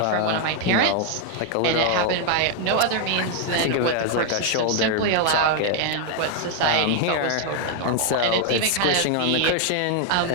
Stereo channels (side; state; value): both; different; correlation 0.00